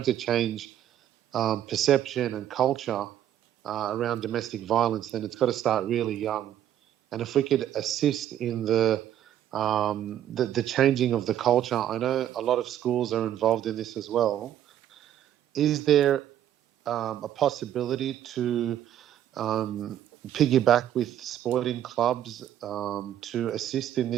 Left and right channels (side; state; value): left; quieter; 11.1 dB